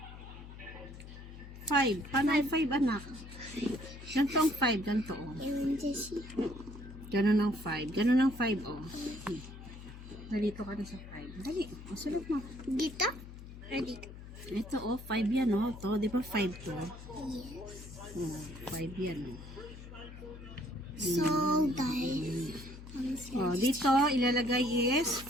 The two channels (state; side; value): noise; left; hum, 14 dB below the sound